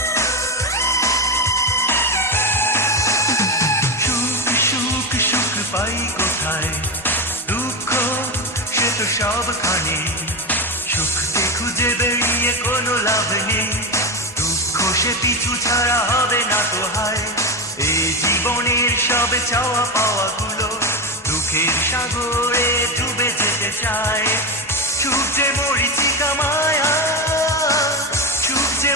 পাই কোথায় দুঃখ সে তো সবখানে সুখকে খুঁজে বেরিয়ে কোনো লাভ নেই দুঃখ সে পিছু ছাড়া হবে না তো হায় এই জীবনের সব চাওয়া পাওয়া গুলো দুঃখের সাগরে ডুবে যেতে চায় সুখ যে মরিচিকা মায়া সুখ যে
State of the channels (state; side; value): normal; both; correlation 0.14